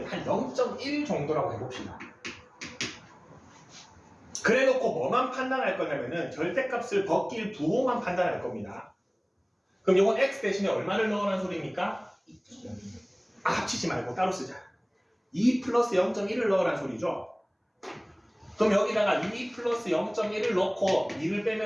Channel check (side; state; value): both; identical; correlation 1.00